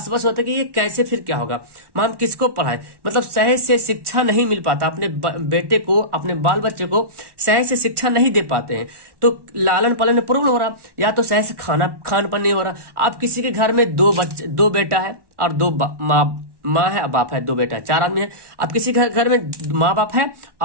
होता है कि ये कैसे फिर क्या होगा, हम किसको पढ़ाए, मतलब सही से शिक्षा नहीं मिल पाता अपने बेटे को, अपने बाल बच्चे को सही से शिक्षा नहीं दे पाते हैं, तो लालन पालन में प्रॉब्लम हो रहा, या तो सही से खान पान नहीं हो रहा। आप किसी के घर में दो बेटा है और दो माँ है, बाप है, 2 बेटा है, 4 आदमी है। अब किसी घर में माँ बाप है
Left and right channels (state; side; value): late; left; 1.1 ms